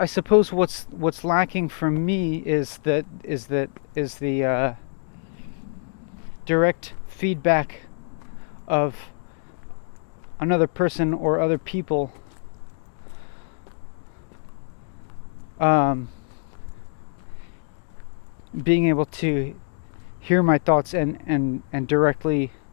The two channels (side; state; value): right; silent; 62 dB below the other